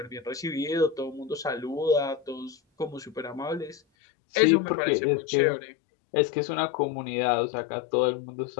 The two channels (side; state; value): right; drops out; at 3.8 s